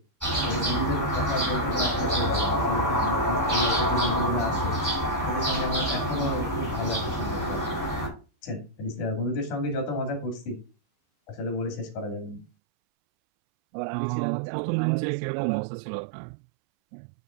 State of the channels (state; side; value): drops out; left; at 12.5 s